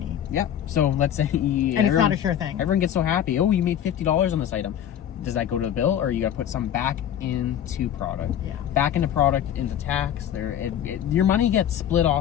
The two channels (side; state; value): right; quieter; 10.1 dB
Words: Yeah. So let's say and it's not a sure thing. Everyone gets so happy. Oh, you made $50 on this item. Does that go to the bill, or you got to put some back into product? Yeah. Back into product, into tax. Your money gets split